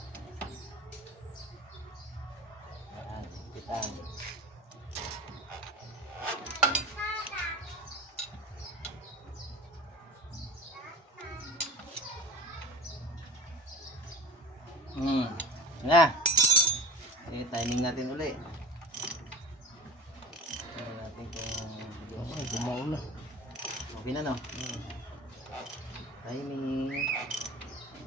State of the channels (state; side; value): normal; both; correlation 0.36